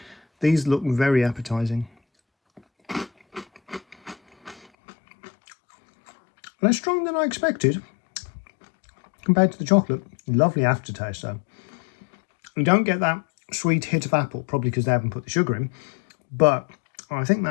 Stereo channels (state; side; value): drops out; right; at 4.7 s